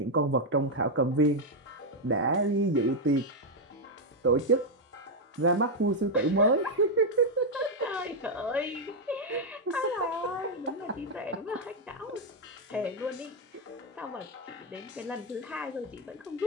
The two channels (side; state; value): both; normal; correlation 0.01